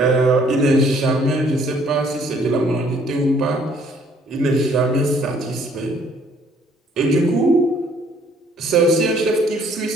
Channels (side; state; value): both; normal; correlation 0.61